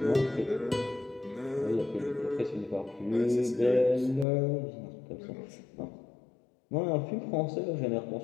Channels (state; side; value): drops out; right; at 4.2 s